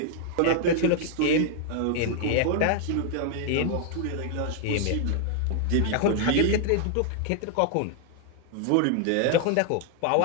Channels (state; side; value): different; both; correlation 0.00